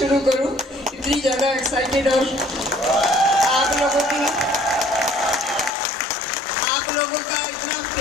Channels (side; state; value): right; drops out; at 5.8 s